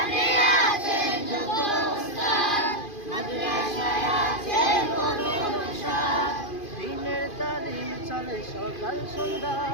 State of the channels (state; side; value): late; right; 2.5 ms